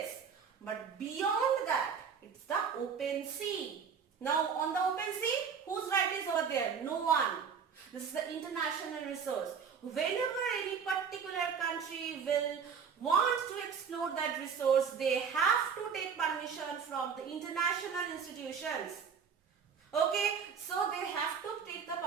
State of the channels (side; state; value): left; quieter; 6.6 dB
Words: But beyond that, it's the open sea. Now on the open sea, whose right is over there? No one. This is the international resource. Whenever any particular country will want to explore that resource, they have to take permission from the international institutions. Okay, so they have to take the